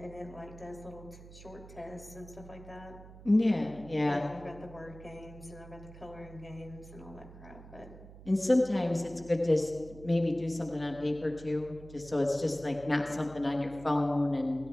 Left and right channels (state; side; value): noise; right; hum, 17 dB below the sound